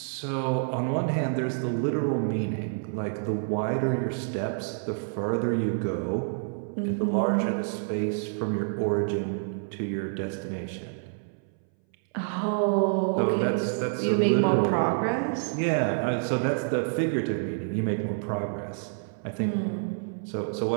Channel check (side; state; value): left; silent; 59 dB below the other